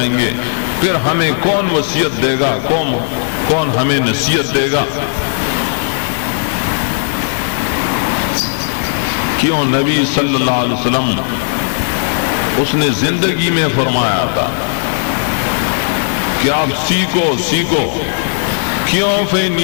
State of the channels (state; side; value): silent; right; digital silence